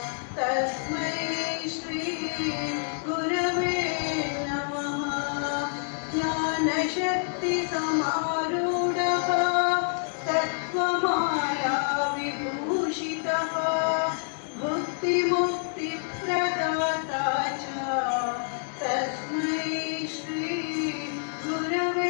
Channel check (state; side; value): silent; right; digital silence